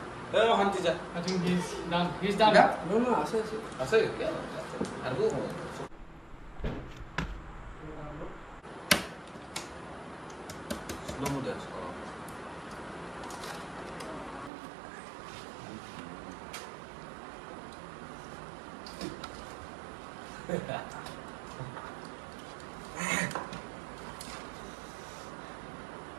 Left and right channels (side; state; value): left; drops out; at 14.5 s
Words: I think he's done. He's done. আছে আৰু slow mo dance